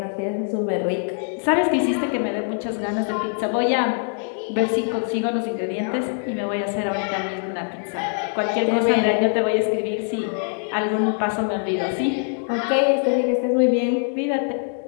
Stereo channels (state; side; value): silent; right; 56 dB below the other